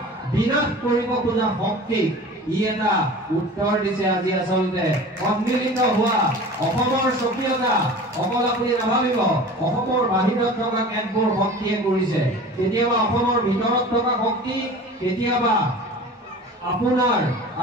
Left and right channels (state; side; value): normal; both; correlation 0.39